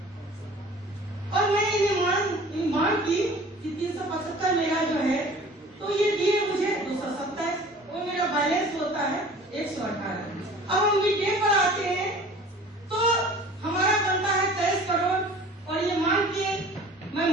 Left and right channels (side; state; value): both; normal; correlation 0.46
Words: और मैंने ये मांग की कि 375 मेरा जो है, तो ये दिए मुझे 227 और मेरा बैलेंस होता है 118। अब हम मिड डे पर आते हैं तो हमारा बनता है 23 करोड़ और ये मैं